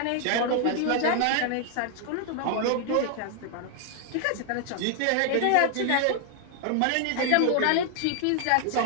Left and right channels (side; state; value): both; different; correlation 0.00